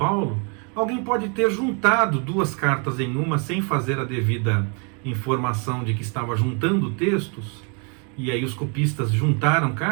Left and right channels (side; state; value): left; quieter; 36.2 dB